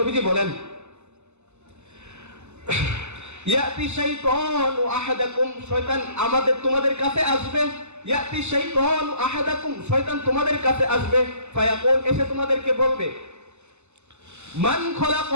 বলেন, ইয়াতি শাইতানু আহাদাকুম, শয়তান তোমাদের কাছে আসবে, ইয়াতি শাইতানু আহাদাকুম, শয়তান তোমাদের কাছে আসবে, ফায়াকুল, এসে তোমাদেরকে বলবে, মান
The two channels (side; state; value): left; late; 0.82 ms